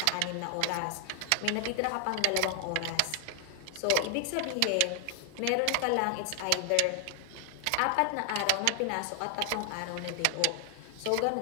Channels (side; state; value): both; different; correlation 0.00